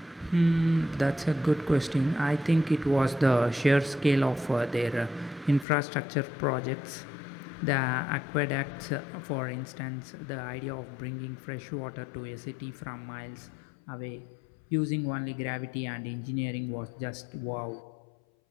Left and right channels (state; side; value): drops out; right; at 5.7 s